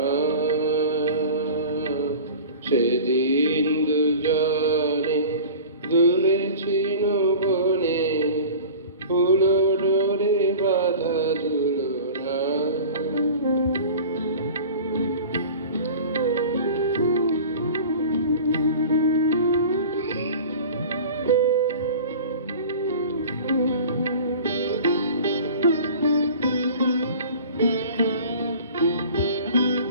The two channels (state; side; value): inverted; both; correlation -0.39